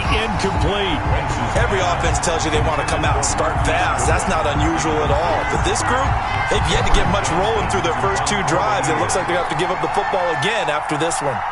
incomplete. Every offense tells you they want to come out and start fast. That's not unusual at all. But this group, they've yet to get much rolling through their first 2 drives. It looks like they have to give up the football again after this one.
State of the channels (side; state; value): both; identical; correlation 1.00